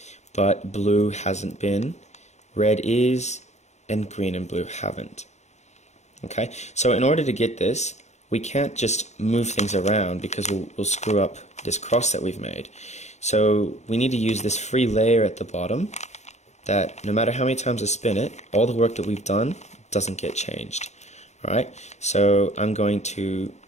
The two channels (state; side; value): late; right; 0.33 ms